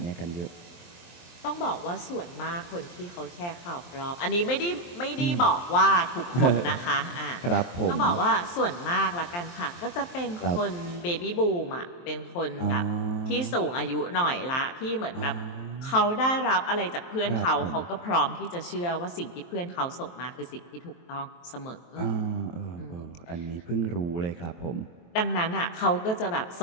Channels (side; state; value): right; late; 23 ms